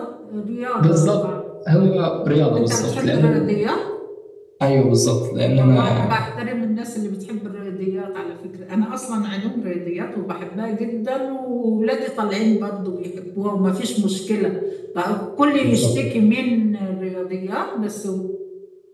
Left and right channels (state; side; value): identical; both; correlation 1.00